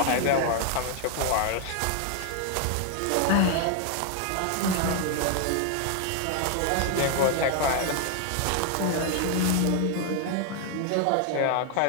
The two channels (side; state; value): both; different; correlation 0.00